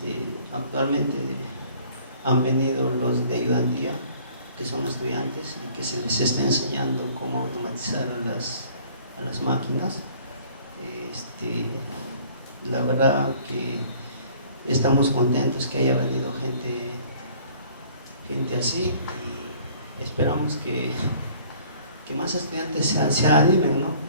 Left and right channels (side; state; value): both; inverted; correlation -0.54